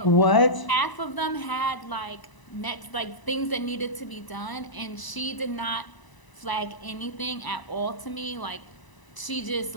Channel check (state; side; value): late; right; 1.0 ms